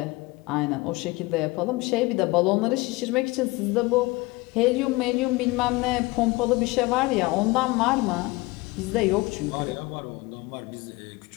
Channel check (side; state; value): right; quieter; 22.5 dB